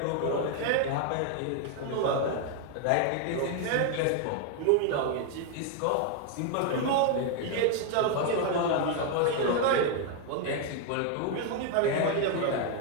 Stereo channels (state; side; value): different; both; correlation 0.00